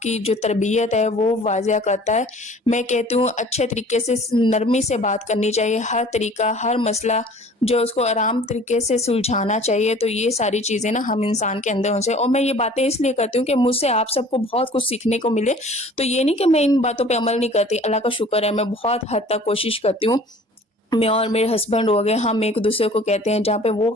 جو تربیت ہے وہ واضح کرتا ہے۔ میں کہتی ہوں اچھے طریقے سے نرمی سے بات کرنی چاہیے، ہر طریقہ ہر مسئلہ جو اس کو آرام طریقے سے سلجھانا چاہیے۔ تو یہ ساری چیزیں نا ہم انسان کے اندر ہونے چاہیے، اور میں یہ باتیں اس لیے کرتی ہوں کہ مجھ سے آپ سب کو بہت کچھ سیکھنے کو ملے۔ تو یہ نہیں کہ میں ان باتوں پہ عمل نہیں کرتی، اللہ کا شکر ہے میں بہت حد تک کوشش کرتی ہوں۔ میں اور میرے ہسبینڈ ہو گئے، ہم ایک دوسرے کو کہتے ہیں جہاں پہ وہ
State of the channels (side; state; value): both; normal; correlation 0.48